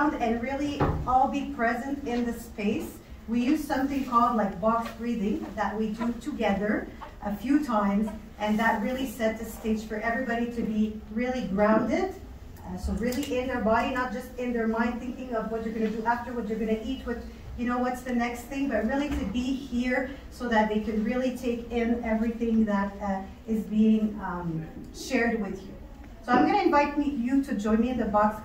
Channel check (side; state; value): both; identical; correlation 1.00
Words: and really all be present in the space, we use something called like box breathing that we do together a few times, and that really set the stage for everybody to be really grounded. So really in their body, not just in their mind thinking of what you're going to do after, what you're going to eat, what, you know, what's the next thing, but really to be here so that they can really take in everything that is being shared with you. So I'm going to invite you to join me in the box